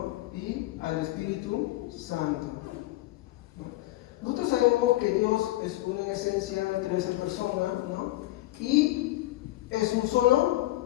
Y al Espíritu Santo. ¿No? Nosotros sabemos que Dios es uno en esencia, tres en persona, ¿no? Y es un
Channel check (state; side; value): quieter; right; 17.7 dB